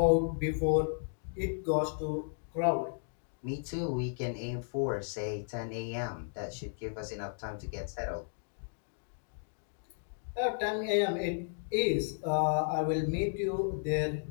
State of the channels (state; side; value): silent; right; digital silence